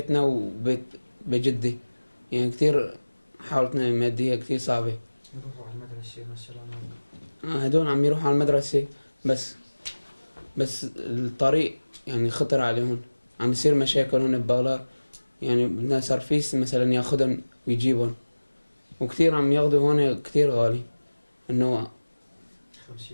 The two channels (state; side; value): inverted; both; correlation -1.00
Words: وبيت بجدي يعني كثير حالتنا الماديه كثير صعبه. يروحوا على المدرسة مثلا هدول عم يروحوا على المدرسه بس الطريق يعني خطر عليهم عم يصير مشاكل هون ببغلار يعني بدنا سرفيس مثلا ياخدهم ويجيبهم وكثير عم ياخدوا هون كثير غالي انه